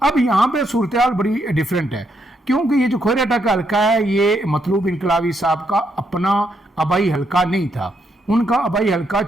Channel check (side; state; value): both; normal; correlation 0.77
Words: اب یہاں پہ صورتحال بڑی ڈیفرنٹ ہے کیونکہ یہ جو کھوئرٹا کا حلقہ ہے یہ مطلوب انقلابی صاحب کا اپنا آبائی حلقہ نہیں تھا, ان کا آبائی حلقہ